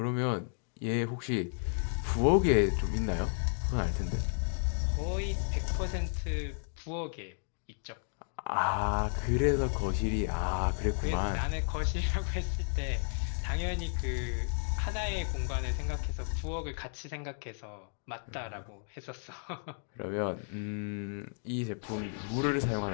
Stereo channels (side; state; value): right; silent; digital silence